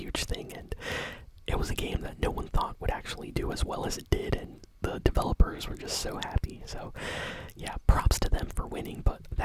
thing, and it was a game that no one thought would actually do as well as it did, and the developers were just so happy. So, yeah, props to them for winning, but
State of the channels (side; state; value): both; identical; correlation 1.00